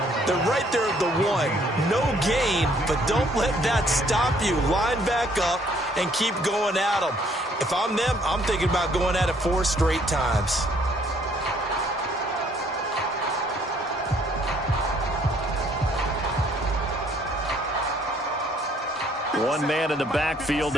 They're right there at the 1. No gain, but don't let that stop you. Line back up and keep going at them. If I'm them, I'm thinking about going at it 4 straight times. One man in the backfield,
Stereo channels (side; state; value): both; normal; correlation 0.63